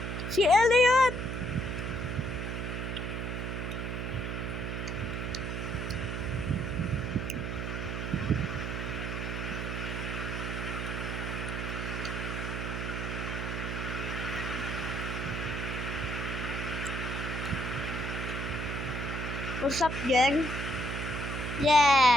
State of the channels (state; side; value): noise; right; hum, 3 dB below the sound